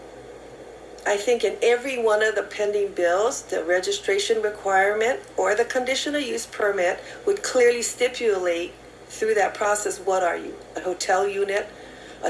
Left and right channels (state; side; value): identical; both; correlation 1.00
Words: I think in every one of the pending bills, the registration requirement or the conditional use permit would clearly stipulate through that process, what are you? A hotel unit, a